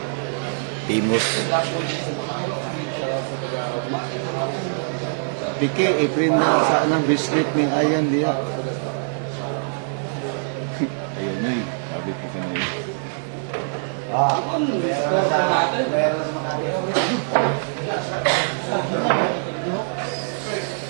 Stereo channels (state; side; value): silent; left; 63 dB below the other